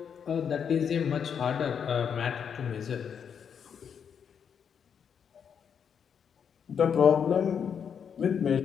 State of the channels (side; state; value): right; quieter; 7.4 dB